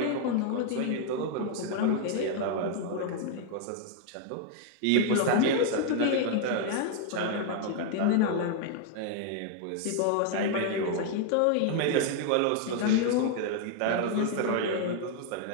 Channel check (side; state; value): both; different; correlation 0.00